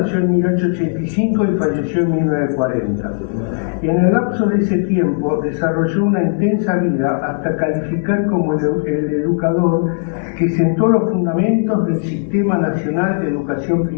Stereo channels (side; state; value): right; silent; 68 dB below the other